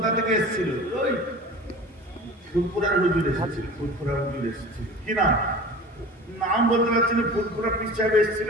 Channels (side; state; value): both; normal; correlation 0.38